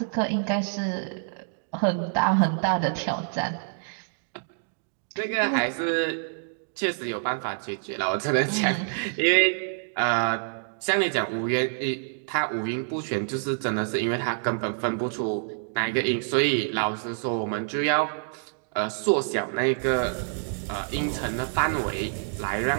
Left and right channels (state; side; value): silent; left; digital silence